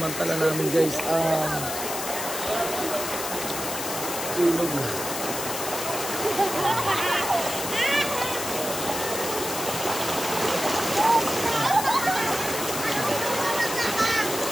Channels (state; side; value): noise; left; hiss, 5 dB below the sound